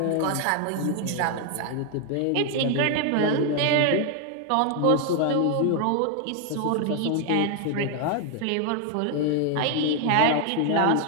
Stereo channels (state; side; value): different; both; correlation 0.01